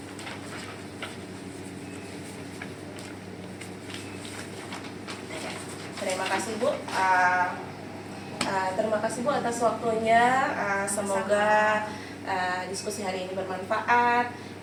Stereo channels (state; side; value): identical; both; correlation 1.00